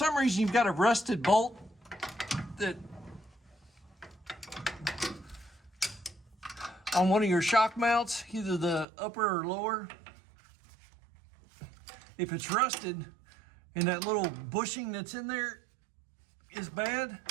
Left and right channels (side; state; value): left; drops out; at 8.8 s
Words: reason you've got a rusted bolt that on one of your shock mounts, either the upper or lower, if it's rusted and that little bushing that's in there is bad,